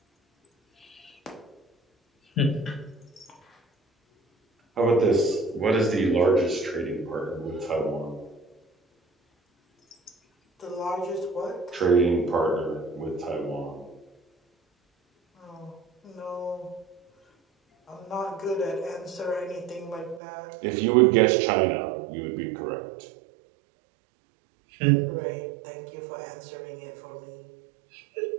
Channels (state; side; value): drops out; left; at 20.2 s